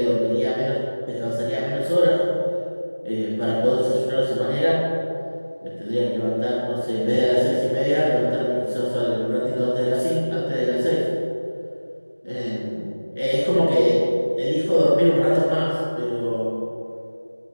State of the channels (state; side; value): inverted; both; correlation -1.00